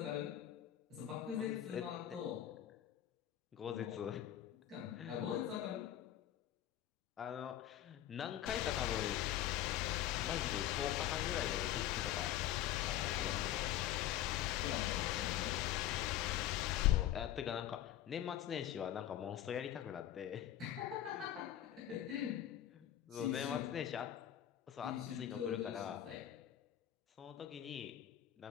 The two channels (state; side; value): quieter; right; 12.0 dB